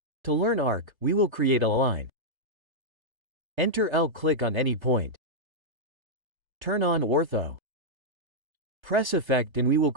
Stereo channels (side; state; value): left; late; 1.3 ms